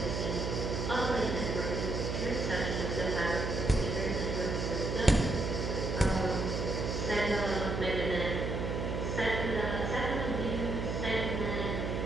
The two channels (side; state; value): right; noise; hum, 2 dB below the sound